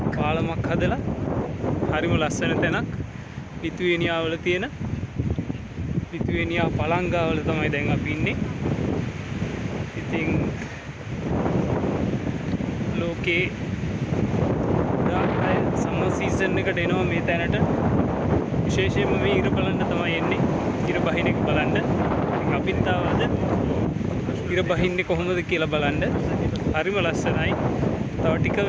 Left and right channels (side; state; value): both; identical; correlation 1.00